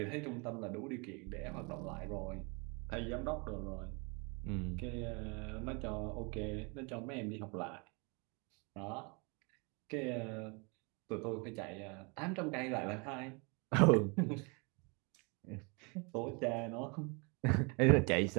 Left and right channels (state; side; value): quieter; left; 31.4 dB